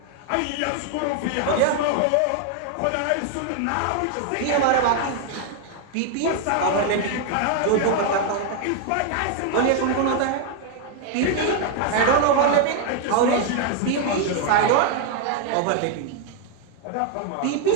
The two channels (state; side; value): different; both; correlation 0.00